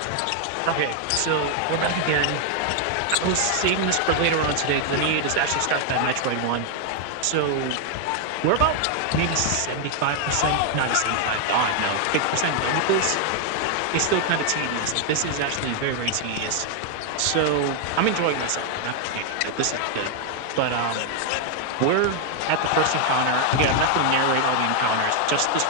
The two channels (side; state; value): both; different; correlation 0.00